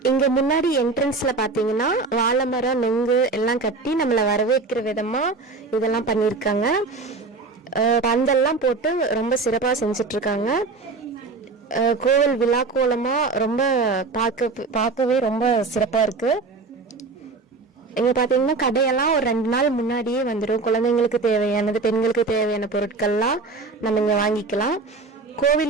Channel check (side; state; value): left; quieter; 4.0 dB